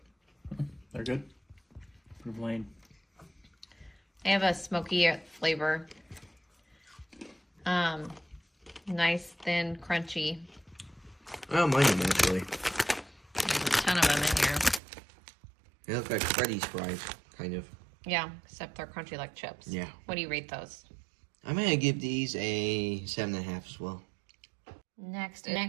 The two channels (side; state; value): left; drops out; at 14.8 s